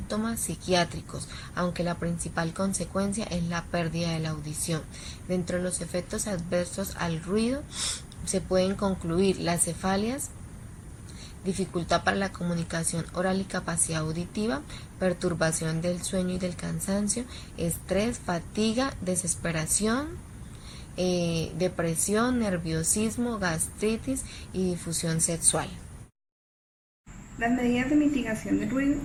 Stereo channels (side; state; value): both; identical; correlation 1.00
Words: psiquiátricos, aunque la principal consecuencia es la pérdida de la audición. Dentro de los efectos adversos al ruido se pueden concluir las cefalias, dificultad para la comunicación oral y capacidad auditiva, perturbación del sueño y del cansancio, estrés, fatiga, desesperación, depresión, nerviosismo, gastritis y difusión sexual. Las medidas de mitigación del ruido